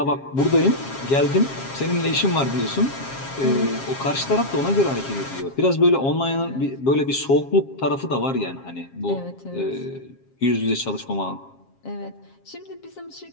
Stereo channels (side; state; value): right; late; 7.4 ms